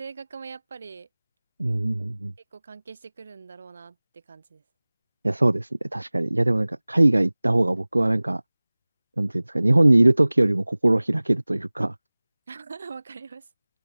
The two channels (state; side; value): inverted; both; correlation -1.00